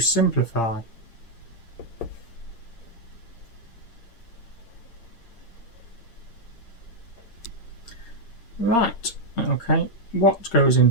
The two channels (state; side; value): late; right; 8.7 ms